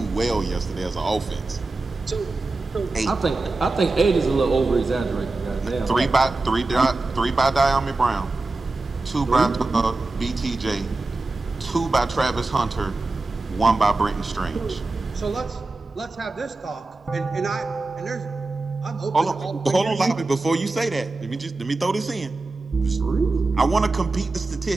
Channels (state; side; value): quieter; left; 3.3 dB